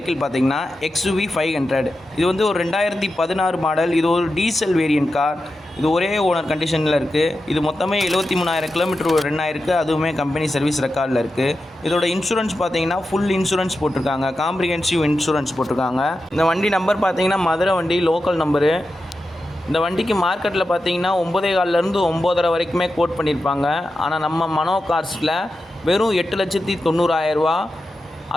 பார்த்திங்கன்னா XUV 500. இது வந்து ஒரு 2016 மாடல். இது ஒரு டீசல் வேரியன்ட் கார். இது ஒரே ஓனர் கண்டிஷனில் இருக்குது. இது மொத்தமே 73,000 கிலோமீட்டர் ரன் ஆயிருக்கு. அதுவுமே கம்பெனி சர்வீஸ் ரெக்கார்டில் இருக்குது. இதோட இன்சூரன்ஸ் பார்த்திங்கன்னா ஃபுல் இன்சூரன்ஸ் போட்டிருக்காங்க. காம்ப்ரிஹென்சிவ் இன்சூரன்ஸ் போட்டிருக்காங்க. இந்த வண்டி நம்பர் பார்த்திங்கன்னா மதுரை வண்டி லோக்கல் நம்பரு. இந்த வண்டிக்கு மார்க்கெட்டில் பார்த்தீங்கன்னா 9,400 9,500 வரைக்குமே கோட் பண்ணியிருப்பாங்க. ஆனால் நம்ம மனோ கார்ஸில் வெறும் 8,90,000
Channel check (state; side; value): normal; both; correlation 0.90